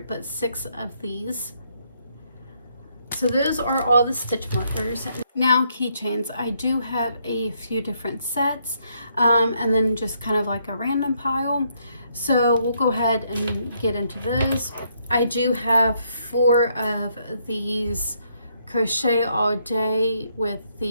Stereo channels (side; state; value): both; inverted; correlation -0.73